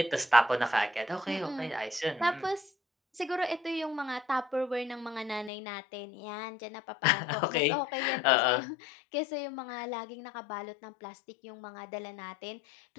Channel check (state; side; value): drops out; right; at 5.5 s